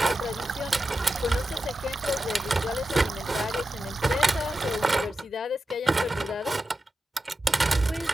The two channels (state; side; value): normal; both; correlation 0.91